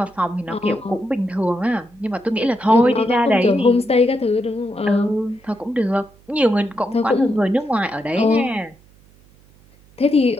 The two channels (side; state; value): right; noise; hum, 29 dB below the sound